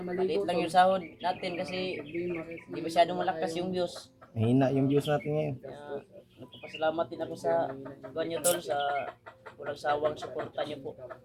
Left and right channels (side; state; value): both; identical; correlation 1.00